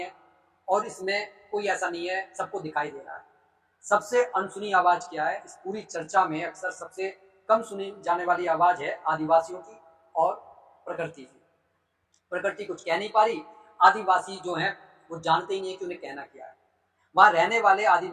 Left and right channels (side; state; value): both; identical; correlation 1.00